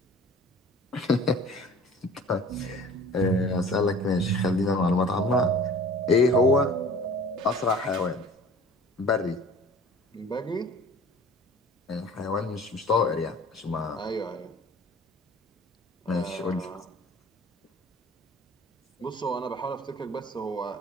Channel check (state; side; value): normal; both; correlation 0.46